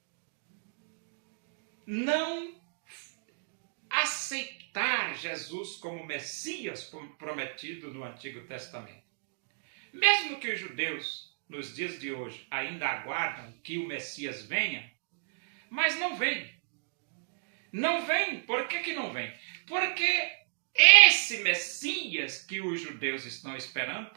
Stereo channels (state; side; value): silent; left; digital silence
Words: não aceitar Jesus como Messias prometido no Antigo Testamento. Mesmo que os judeus, nos dias de hoje, ainda aguardam que o Messias venha, mas não vem. Não vem. Por que não vem? Porque esse Messias que os judeus estão esperando,